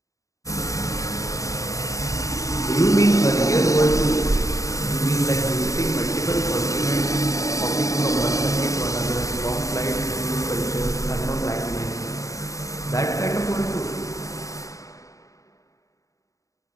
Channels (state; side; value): late; right; 0.16 ms